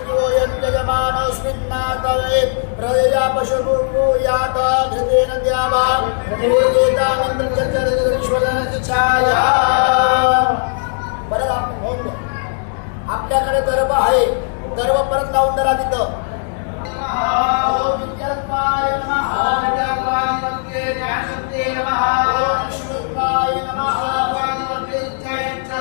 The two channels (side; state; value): right; silent; digital silence